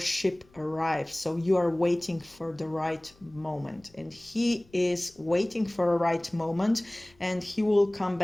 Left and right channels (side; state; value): left; noise; rumble, 30 dB below the sound